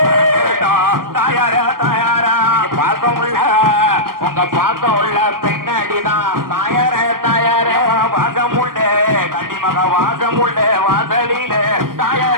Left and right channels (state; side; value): late; left; 0.92 ms